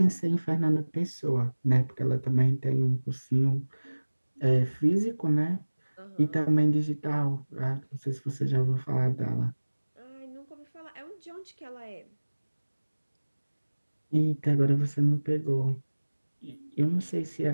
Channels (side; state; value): both; inverted; correlation -1.00